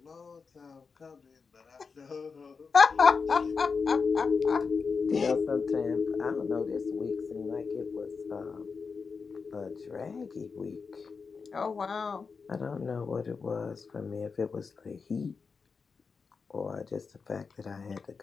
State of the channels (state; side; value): quieter; right; 5.1 dB